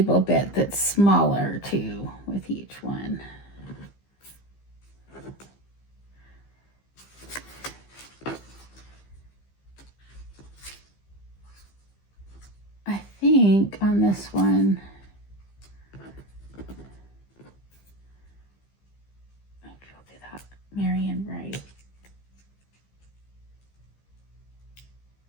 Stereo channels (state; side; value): late; right; 15 ms